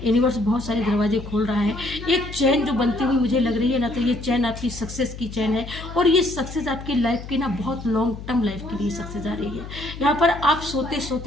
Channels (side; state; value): left; noise; hum, 11 dB below the sound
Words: यूनिवर्स बहुत सारे दरवाजे खोल रहा है। एक चैन जो बनती हुई मुझे लग रही है ना, तो ये चैन आपकी सक्सेस की चैन है, और ये सक्सेस आपकी लाइफ की ना बहुत लॉन्ग टर्म लाइफ के लिए सक्सेस आ रही है। यहाँ पर आप सोते